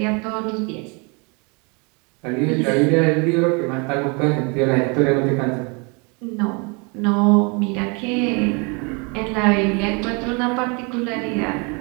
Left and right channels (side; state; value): left; quieter; 31.7 dB